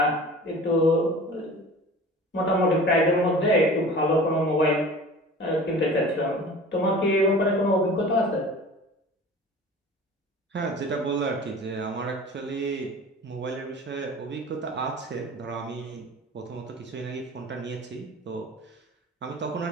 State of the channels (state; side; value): normal; both; correlation 0.41